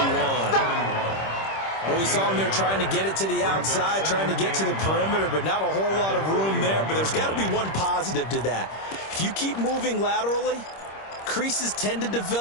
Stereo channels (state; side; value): late; right; 26 ms